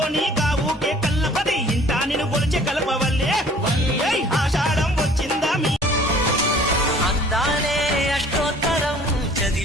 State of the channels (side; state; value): both; normal; correlation 0.52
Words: నీ గావుకే కల్లపది ఇంటా నిన్ను కొలిచే కలపవల్లే ఆషాఢం వచ్చిందా మీ అందాలే అష్టోత్తరం